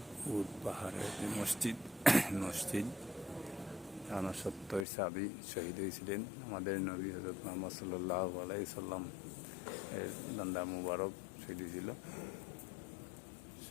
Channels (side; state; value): right; drops out; at 4.9 s